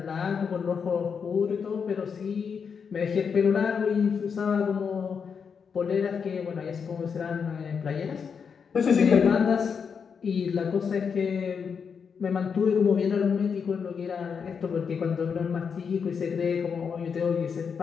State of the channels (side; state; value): right; quieter; 6.3 dB